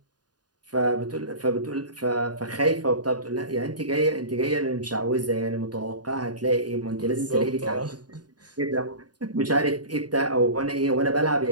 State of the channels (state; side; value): late; left; 0.69 ms